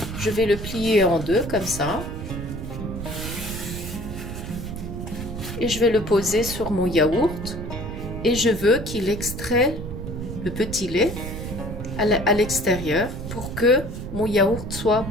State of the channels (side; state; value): right; noise; rumble, 7 dB below the sound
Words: Je vais le plier en deux comme ça. Et je vais le poser sur mon yaourt et je veux qu'il extrait le petit lait à l'extérieur pour que mon yaourt soit